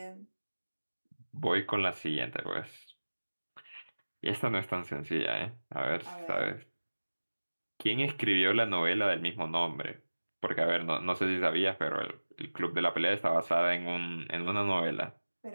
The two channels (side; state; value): both; inverted; correlation -1.00